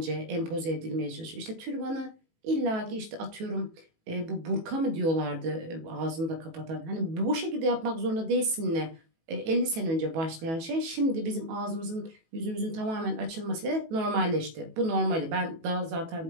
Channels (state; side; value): late; left; 18 ms